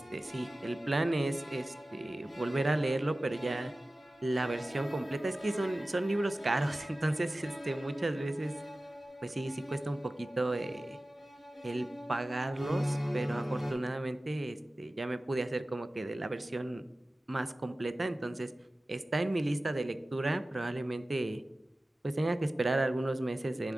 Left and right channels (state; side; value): normal; both; correlation 0.96